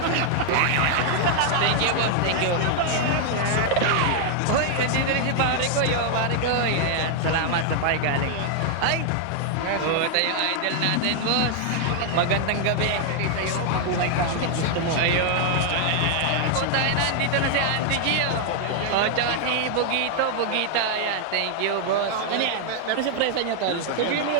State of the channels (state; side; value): different; both; correlation 0.00